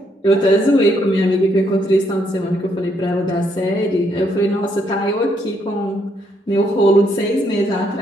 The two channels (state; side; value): normal; both; correlation 0.73